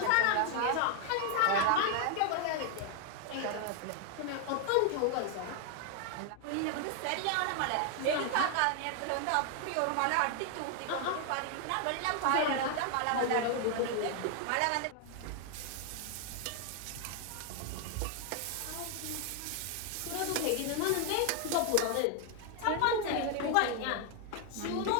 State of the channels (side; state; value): both; different; correlation 0.00